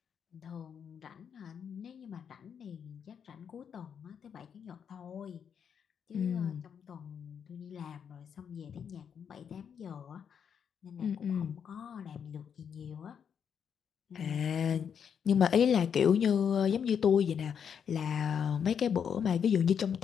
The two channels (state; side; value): quieter; right; 7.6 dB